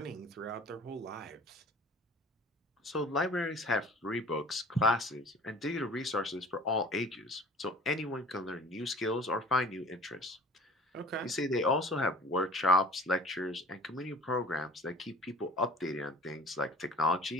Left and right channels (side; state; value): both; normal; correlation 0.45